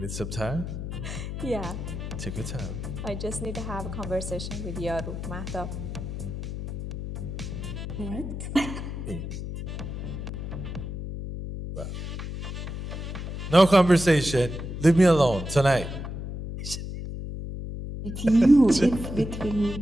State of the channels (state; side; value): noise; left; hum, 6 dB below the sound